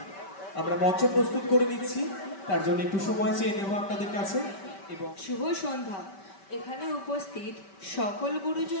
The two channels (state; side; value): late; right; 5.2 ms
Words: আমরা মঞ্চ প্রস্তুত করে নিচ্ছি, তার জন্য একটু সময় চেয়ে নেব আপনাদের কাছে। এবং শুভ সন্ধ্যা। এখানে উপস্থিত সকল